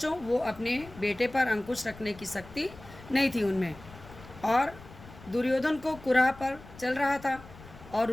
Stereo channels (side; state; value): left; noise; rumble, 18 dB below the sound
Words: वो अपने बेटे पर अंकुश रखने की शक्ति नहीं थी उनमें। और दुर्योधन को कुराह पर चल रहा था और